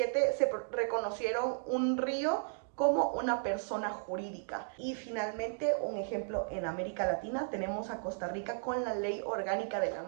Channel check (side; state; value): left; silent; digital silence